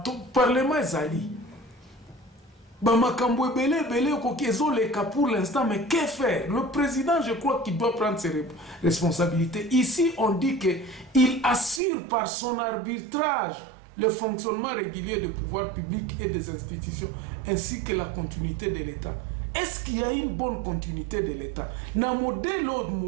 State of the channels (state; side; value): drops out; left; at 11.8 s